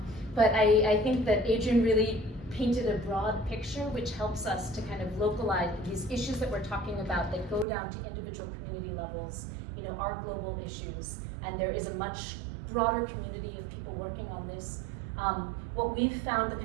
But I think that Adrian really painted a broad picture, which helps us to kind of localize these issues that we're talking about that go down to individual community levels, you know, are global issues, and there is a much broader community of people working on this. What we've found, the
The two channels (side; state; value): left; drops out; at 7.7 s